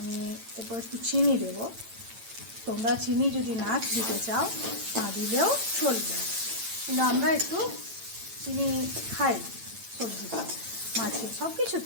এরপর একটু চিনি দেব। তোমরা চিনি যদি না দিতে চাও না দিলেও চলবে, কিন্তু আমরা একটু চিনি খাই সবজিতে, মাছে, সব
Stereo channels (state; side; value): late; left; 8.9 ms